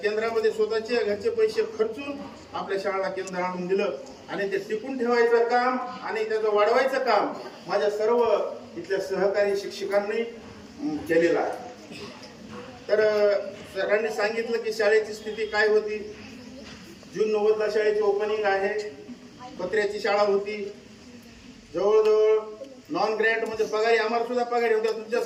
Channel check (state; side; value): identical; both; correlation 1.00